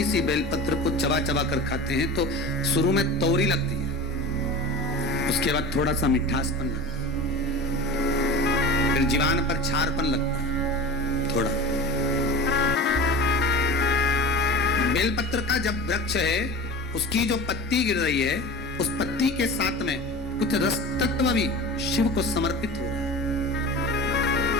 सी बेलपत्र को चबा चबा कर खाते हैं तो शुरू में तौरी लगती है, उसके बाद थोड़ा सा मिठासपन लगता है, फिर जीवान पर छारपन लगता है थोड़ा। बेलपत्र का जब वृक्ष है, उसकी जो पत्ती गिर रही है, उस पत्ती के साथ में कुछ रस तत्व भी शिव को समर्पित हो रहा है,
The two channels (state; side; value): normal; both; correlation 0.33